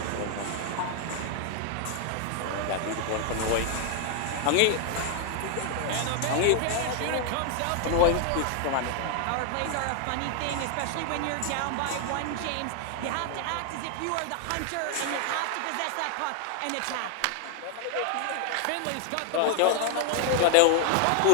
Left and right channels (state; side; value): different; both; correlation 0.00